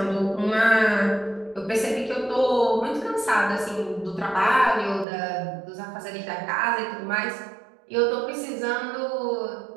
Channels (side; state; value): left; drops out; at 5.1 s